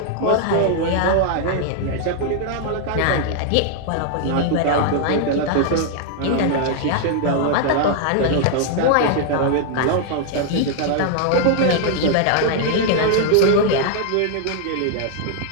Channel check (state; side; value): different; both; correlation 0.00